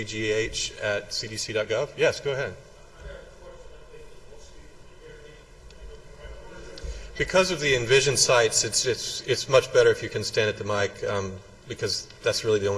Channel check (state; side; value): identical; both; correlation 1.00